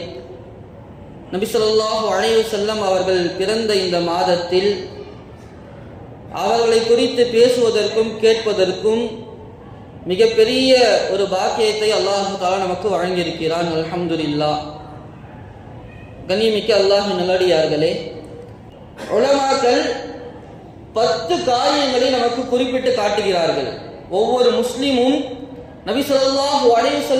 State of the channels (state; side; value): identical; both; correlation 1.00